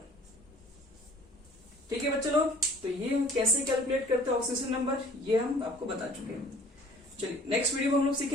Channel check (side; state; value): both; normal; correlation 0.50